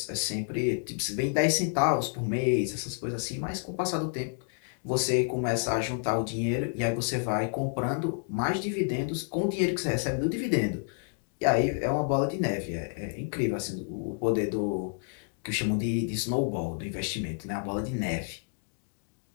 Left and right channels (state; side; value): silent; right; 58 dB below the other